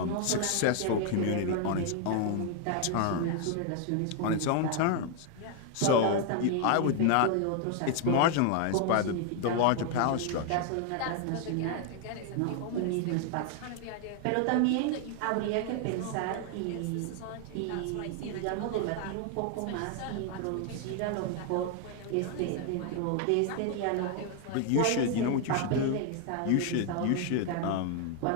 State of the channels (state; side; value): different; both; correlation 0.00